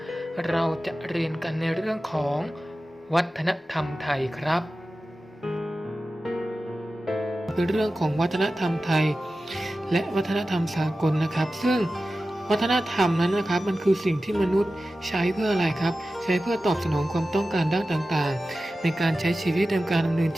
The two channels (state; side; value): normal; both; correlation 0.94